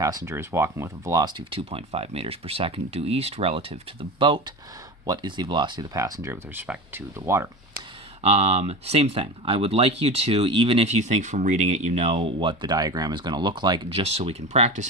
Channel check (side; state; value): both; normal; correlation 0.28